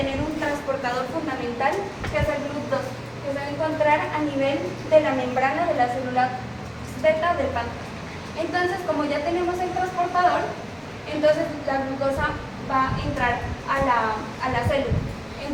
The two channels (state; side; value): identical; both; correlation 1.00